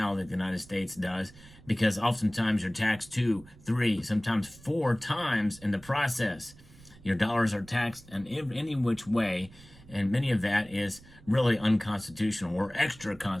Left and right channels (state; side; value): noise; right; rumble, 22 dB below the sound